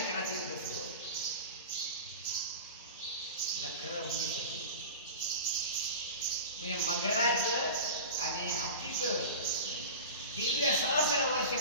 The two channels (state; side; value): inverted; both; correlation -0.32